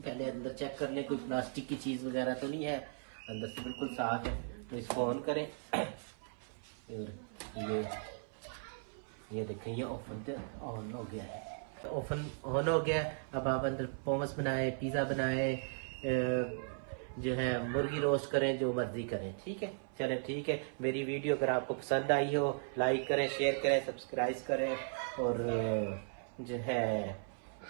अंदर चेक कर ले, कोई प्लास्टिक की चीज़ वगैरह तो नहीं है, अंदर से बिल्कुल साफ है। तो इसको ऑन करें और ये देखें ये ओवन तो ऑन हो गया है। ओवन ऑन हो गया है। अब आप अंदर पोमस बनाए, पिज़्ज़ा बनाए, जो है मुर्गी रोस्ट करें, जो मर्जी करें। ठीक है, चले ठीक है। मेरी वीडियो अगर आपको पसंद आई हो लाइक करें, शेयर करें, सब्सक्राइब करें और जो है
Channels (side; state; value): left; silent; 53 dB below the other